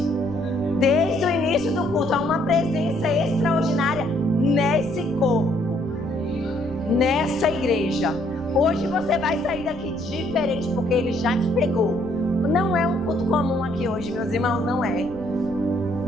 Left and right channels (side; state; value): right; noise; rumble, 15 dB below the sound